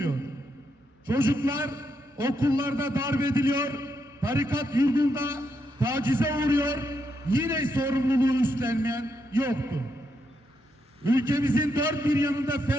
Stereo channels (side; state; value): both; normal; correlation 0.80